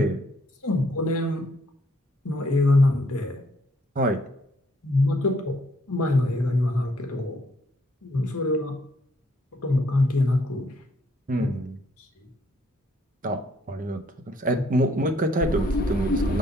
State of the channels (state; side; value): normal; both; correlation 0.68